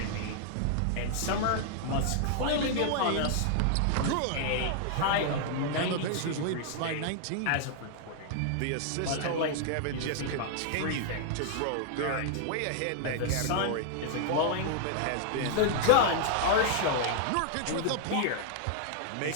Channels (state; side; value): different; both; correlation -0.01